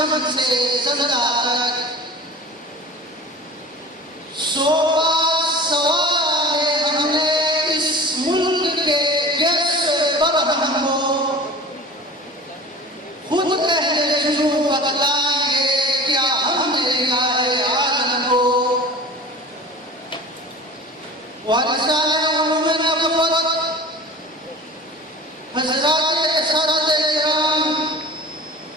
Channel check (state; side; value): normal; both; correlation 0.38